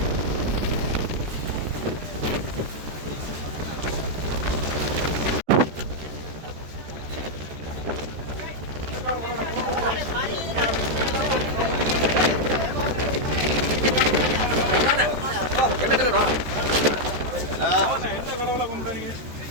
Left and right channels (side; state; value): left; late; 13 ms